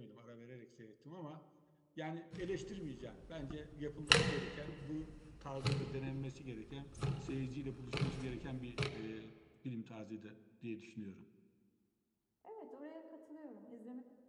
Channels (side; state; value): both; identical; correlation 1.00